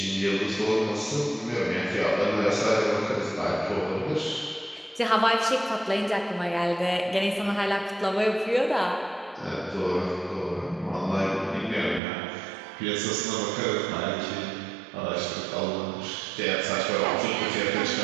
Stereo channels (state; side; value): drops out; left; at 12.0 s